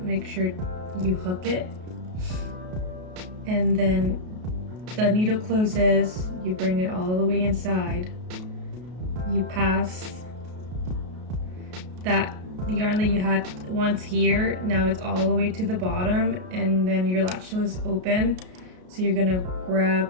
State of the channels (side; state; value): left; late; 33 ms